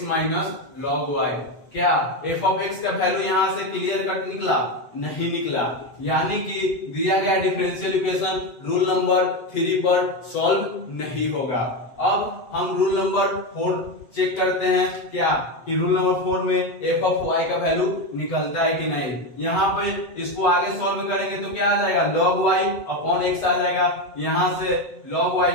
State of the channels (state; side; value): late; right; 8.0 ms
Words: minus log y। क्या f ऑफ x का वैल्यू यहां से क्लियर कट निकला, नहीं निकला, यानी कि दिया गया डिफरेंशियल इक्वेशन रूल नंबर 3 पर सॉल्व नहीं होगा। अब हम रूल नंबर 4 चेक करते हैं क्या कि रूल नंबर 4 में f ऑफ y का वैल्यू निकलता है कि नहीं। यहाँ पे इसको आगे सॉल्व करेंगे तो क्या आ जाएगा log y अपॉन x आ जाएगा, यहां से log